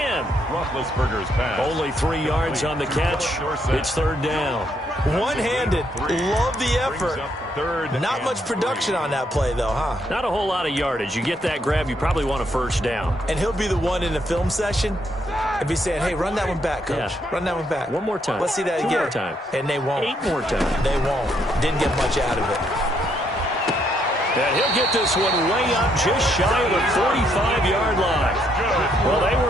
Roethlisberger's pass. Only 3 yards on the catch. It's 3rd down. One-handed. Love the effort. Not much production on that play, though, huh? Not a whole lot of yardage. You get that grab, you probably want a first down. And he'll be the one in the film session and be saying, hey, run that one back, coach. Yeah. Run that one back. One more time. Let's see that again. 2 more time. And they won't. 8 more times. They won't. Didn't get much out of it. And he'll get this one way up just shy of the 45-yard line. Well, they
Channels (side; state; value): both; normal; correlation 0.74